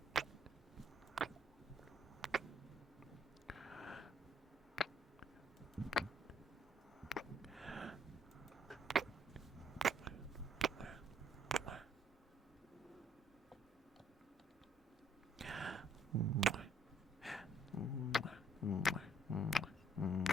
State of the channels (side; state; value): both; normal; correlation 0.66